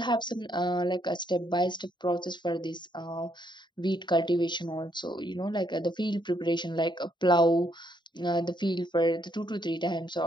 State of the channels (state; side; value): late; right; 0.22 ms